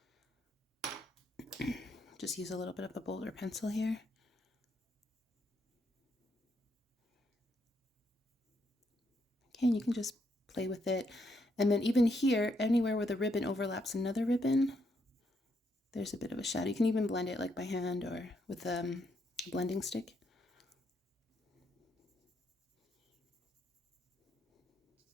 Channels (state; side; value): normal; both; correlation 0.76